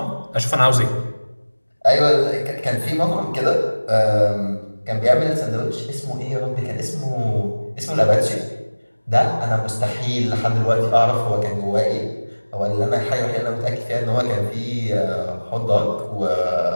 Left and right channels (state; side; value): inverted; both; correlation -1.00